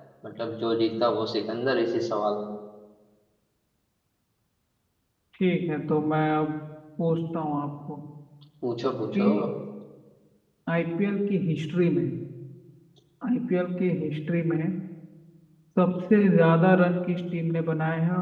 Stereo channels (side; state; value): both; identical; correlation 1.00